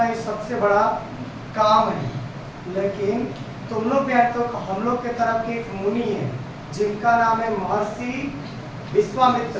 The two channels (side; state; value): both; identical; correlation 1.00